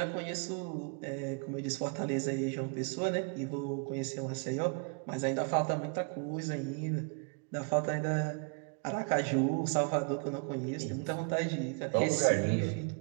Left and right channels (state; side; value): quieter; left; 37.7 dB